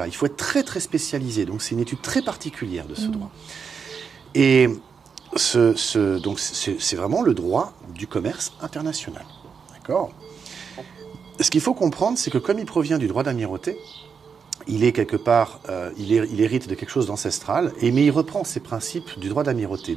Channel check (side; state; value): left; quieter; 6.2 dB